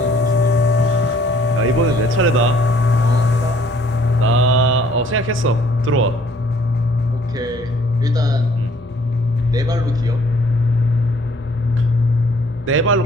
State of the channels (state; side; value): normal; both; correlation 0.60